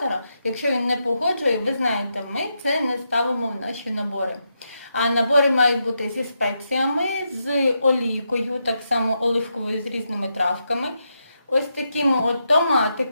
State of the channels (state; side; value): inverted; both; correlation -0.83